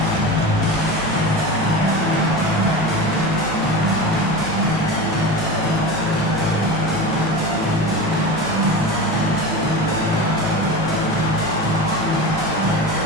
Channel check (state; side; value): normal; both; correlation 0.27